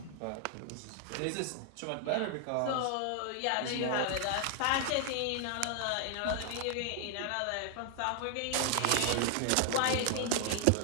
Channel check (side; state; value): both; different; correlation 0.00